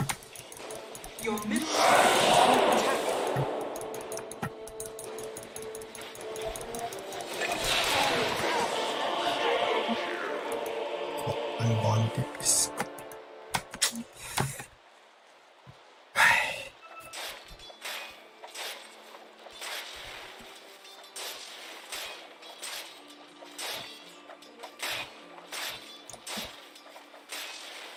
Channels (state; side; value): identical; both; correlation 1.00